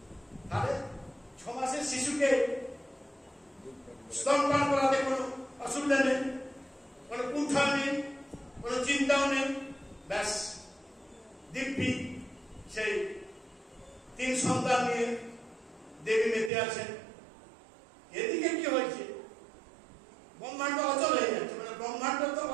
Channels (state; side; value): drops out; left; at 16.5 s